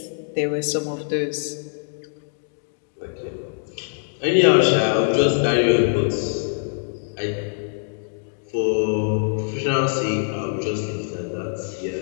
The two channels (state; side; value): silent; right; digital silence